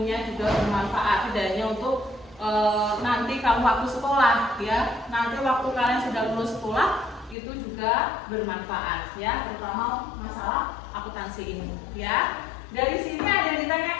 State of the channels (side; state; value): right; drops out; at 7.4 s